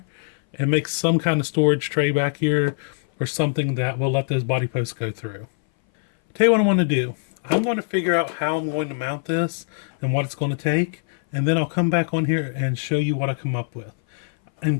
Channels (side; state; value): right; silent; 59 dB below the other